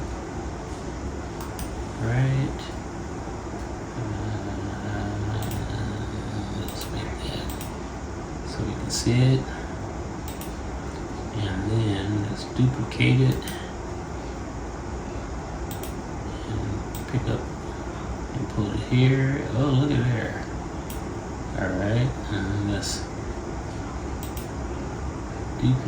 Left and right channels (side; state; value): both; identical; correlation 1.00